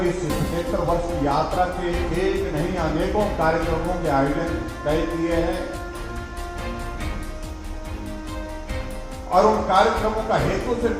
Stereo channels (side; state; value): both; identical; correlation 1.00